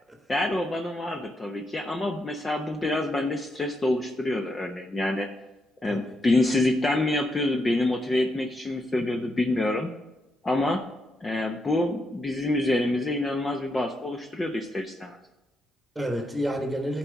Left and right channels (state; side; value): normal; both; correlation 0.81